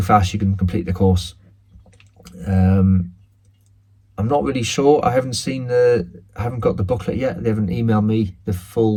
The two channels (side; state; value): both; identical; correlation 1.00